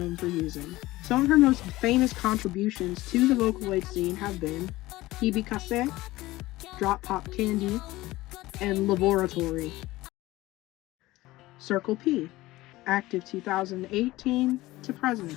for using. Some of her most famous contributions to the Vocaloid scene have been Hibikase, Drop Pop Candy, and Laboratory. Circus P, active 2018 to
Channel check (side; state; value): right; quieter; 18.3 dB